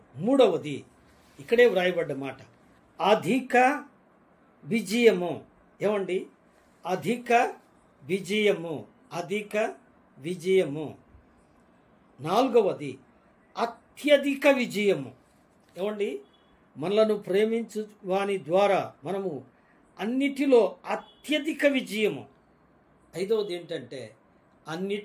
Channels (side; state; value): both; identical; correlation 1.00